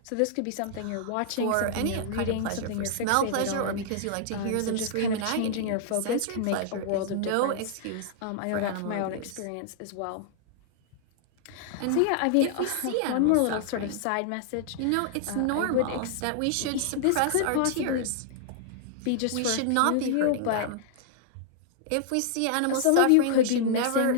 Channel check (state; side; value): different; both; correlation -0.01